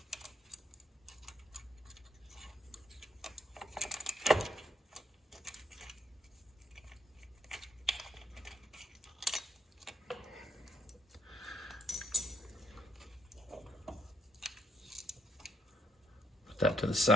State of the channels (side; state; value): both; normal; correlation 0.68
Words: that to the